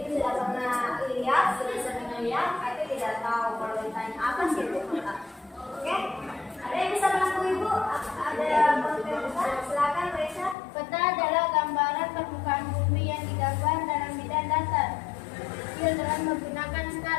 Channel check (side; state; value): right; drops out; at 10.6 s